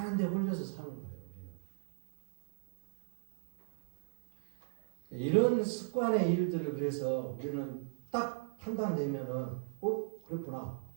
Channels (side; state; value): left; silent; digital silence